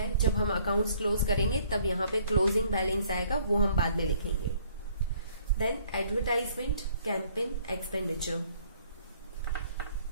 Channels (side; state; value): both; inverted; correlation -0.61